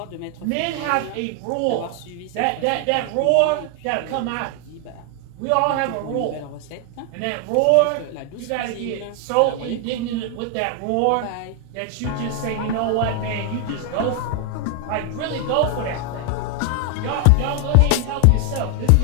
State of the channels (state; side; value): different; both; correlation 0.00